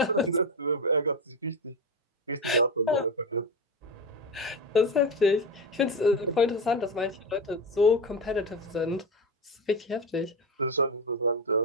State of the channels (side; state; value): both; normal; correlation 0.19